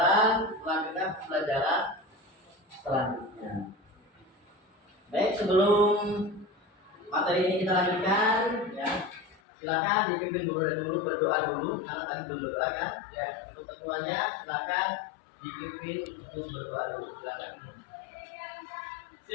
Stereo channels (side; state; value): right; drops out; at 9.3 s